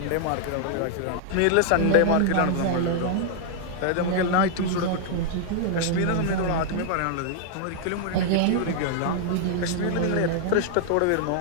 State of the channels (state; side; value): different; both; correlation 0.00